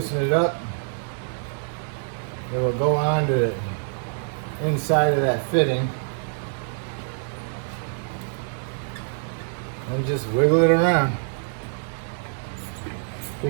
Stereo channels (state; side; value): silent; left; digital silence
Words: it up, it will go on to the inside of that fitting. And just wiggle it around.